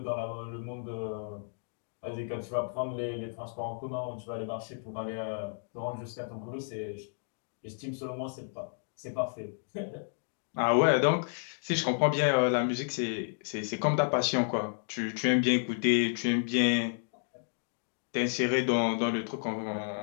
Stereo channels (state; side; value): silent; right; digital silence